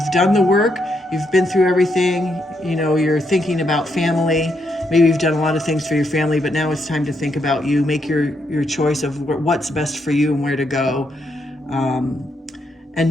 done the work, you've been through everything, you're thinking about family. Maybe you've done a lot of things for your family, but now it's time to think about you. Make your choice of what's best for you and where to go. And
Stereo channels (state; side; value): normal; both; correlation 0.78